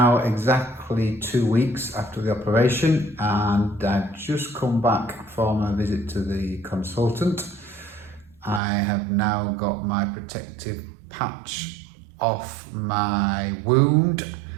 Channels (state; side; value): drops out; left; at 8.6 s